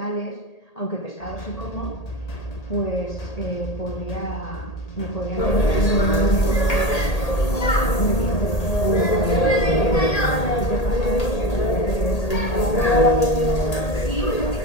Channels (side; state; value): right; late; 1.8 ms